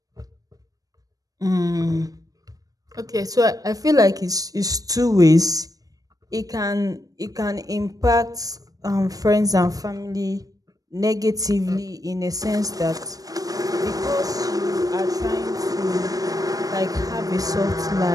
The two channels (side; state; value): left; late; 0.18 ms